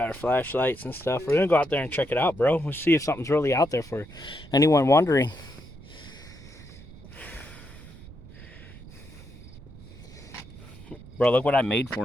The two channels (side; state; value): right; noise; rumble, 18 dB below the sound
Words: our flashlights and stuff. We're gonna go out there and check it out, bro. We'll see if something's really out there for anyone wondering. Bro, look what I made